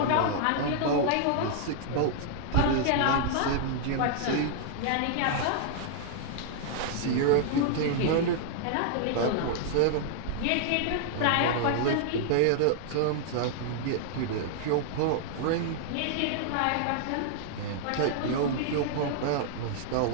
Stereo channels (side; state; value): both; different; correlation -0.01